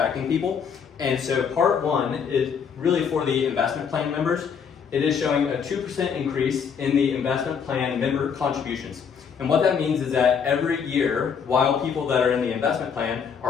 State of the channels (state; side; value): quieter; right; 6.8 dB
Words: people. And so part one is really for the investment plan members. It is showing a 2% increase in the investment plan member contributions. And what that means is that every year, while people that are in the investment plan